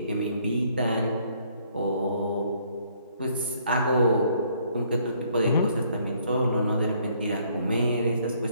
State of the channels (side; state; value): both; inverted; correlation -0.65